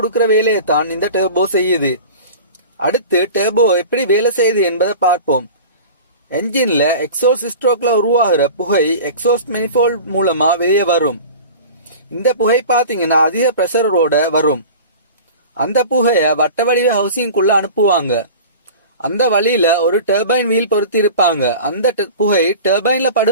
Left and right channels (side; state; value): both; inverted; correlation -0.37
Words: வேலையை தான் இந்த டர்போ செய்யுது. அடுத்து டர்போ எப்படி வேலை செய்யுது என்பதை பார்ப்போம். என்ஜின்ல எக்ஸாஸ்ட் ஸ்ட்ரோக்ல உருவாகிற புகை எக்ஸாஸ்ட் மெனிஃபோல்ட் மூலமா வெளியே வரும். இந்த புகை பாத்தீங்கன்னா அதிக பிரஷரோட வரும். அந்த புகைய வட்ட வடிவ ஹவுசிங்குள்ள அனுப்புவாங்க. அந்த வழியில ஒரு டர்பைன் வீல் பொருத்தி இருப்பாங்க. அந்த புகை டர்பைன்ல